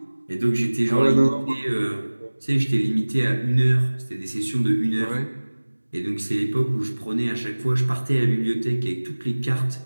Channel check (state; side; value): inverted; both; correlation -1.00